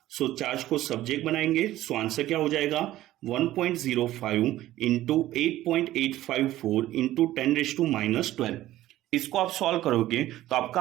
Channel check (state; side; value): quieter; left; 14.8 dB